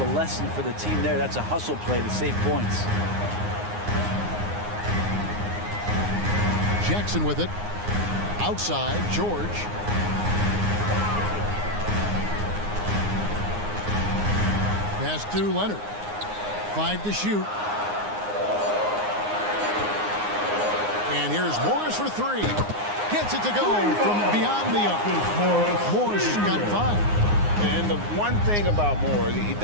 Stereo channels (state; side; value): late; left; 9.6 ms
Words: lesson for the team there. That's a hustle play to save points. Jackson with it. Outside, George. Pass to Leonard. 5 to shoot. And here's Morris for 3. Gets it to go from beyond the arc. Morris has got 5. And the one thing about Morris, he